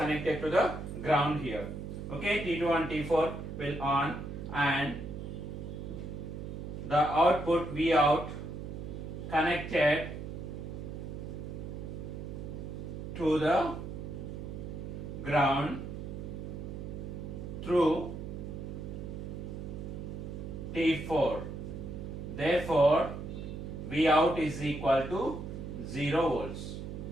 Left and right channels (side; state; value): right; noise; hum, 7 dB below the sound